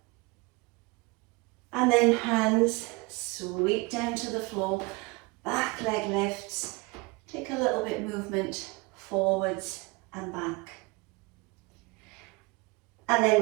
And then hands sweep down to the floor, back leg lifts, take a little bit movement forwards and back. And then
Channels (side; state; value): left; quieter; 25.5 dB